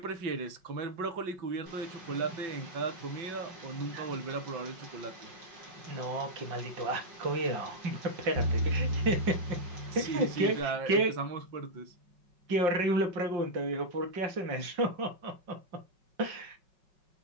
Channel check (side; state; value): left; late; 5.4 ms